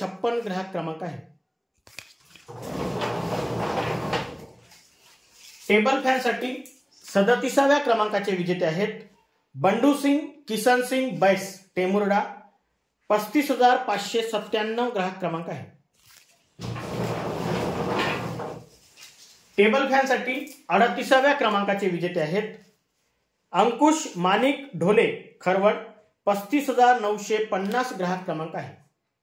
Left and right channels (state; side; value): identical; both; correlation 1.00